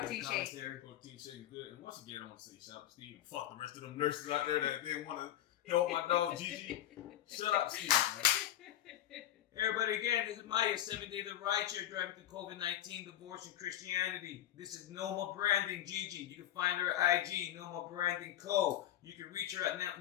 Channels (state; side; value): quieter; right; 12.3 dB